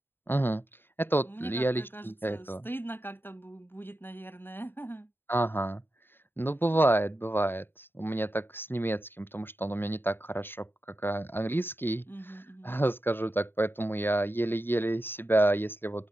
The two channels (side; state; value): right; late; 0.10 ms